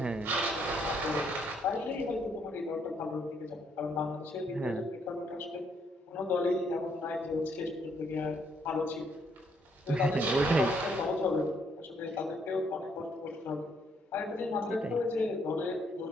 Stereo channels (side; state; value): both; normal; correlation 0.71